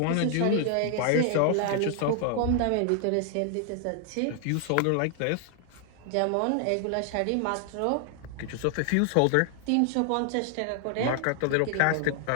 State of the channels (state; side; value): different; both; correlation 0.00